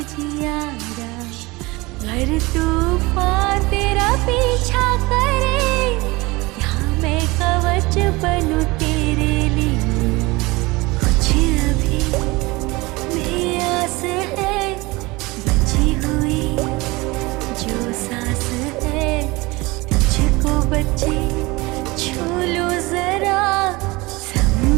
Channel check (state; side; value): quieter; left; 22.9 dB